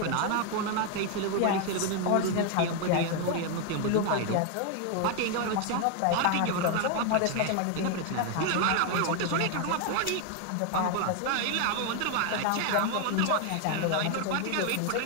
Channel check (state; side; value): different; both; correlation 0.01